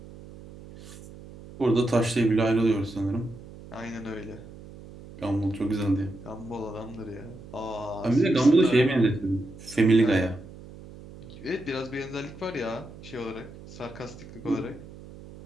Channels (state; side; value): noise; right; hum, 17 dB below the sound